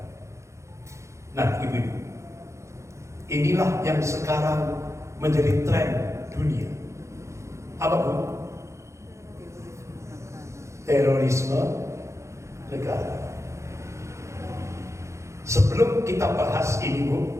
Nah, ibu-ibu, inilah yang sekarang menjadi tren dunia. Apa Bu? Terorisme negara. Sebelum kita bahas ini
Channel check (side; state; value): left; late; 0.14 ms